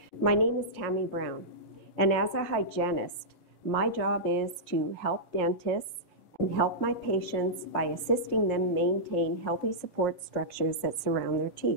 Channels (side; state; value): right; late; 5.6 ms